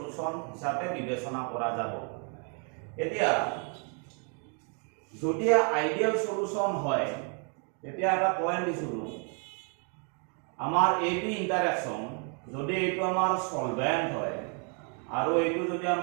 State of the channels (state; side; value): quieter; left; 39.7 dB